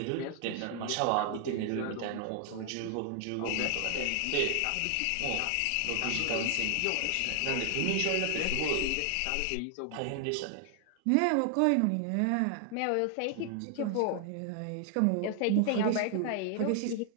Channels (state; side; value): different; both; correlation 0.00